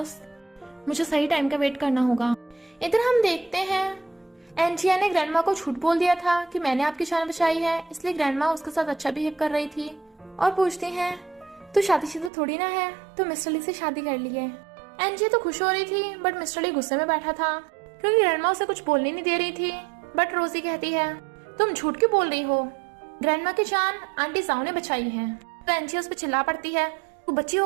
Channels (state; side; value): drops out; left; at 12.3 s